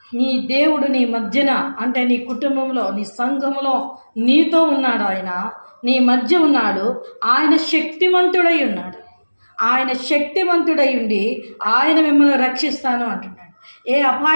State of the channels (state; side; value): inverted; both; correlation -1.00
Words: నీ దేవుడు నీ మధ్యన, అంటే నీ కుటుంబంలో, నీ సంఘములో నీతో ఉన్నాడు. ఆయన నీ మధ్య ఉన్నాడు. ఆయన శక్తిమంతుడై ఉన్నాడు. ఆయన శక్తివంతుడై ఉండి ఆయన మిమ్మల్ని రక్షిస్తాను అంటున్నాడు. ఏ